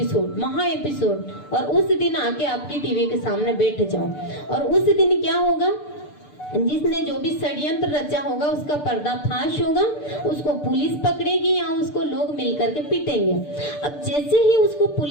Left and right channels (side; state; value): right; late; 6.8 ms